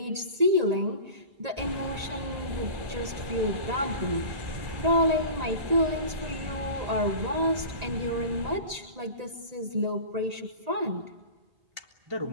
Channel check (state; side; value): late; left; 1.9 ms